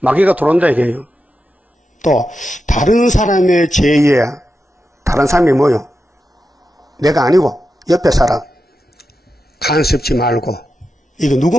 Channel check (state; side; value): normal; both; correlation 0.89